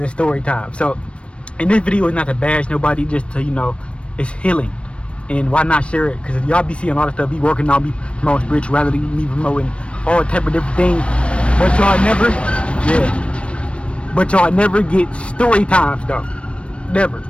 story time. So, and this video is not to bash nobody, just to, you know, it's healing. And why not share it? Because y'all be seeing a lot of stuff, be working on, be promoting spirituality, me promoting all type of different things. But y'all never, but y'all never get story times though. Never.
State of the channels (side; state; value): right; late; 0.060 ms